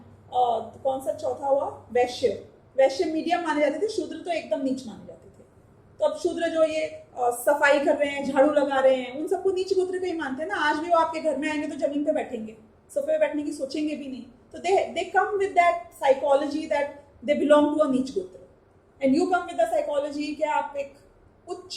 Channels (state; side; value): identical; both; correlation 1.00